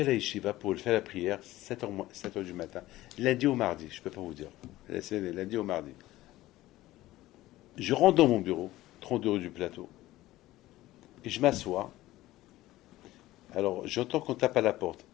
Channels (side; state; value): right; quieter; 16.5 dB